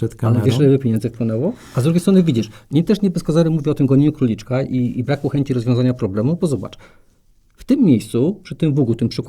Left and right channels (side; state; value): both; identical; correlation 1.00